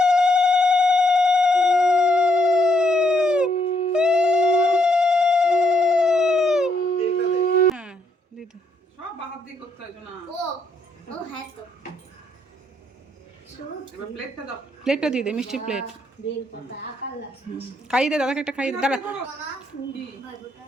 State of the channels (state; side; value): normal; both; correlation 0.74